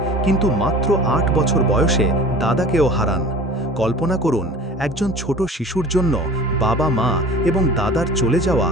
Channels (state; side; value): normal; both; correlation 0.42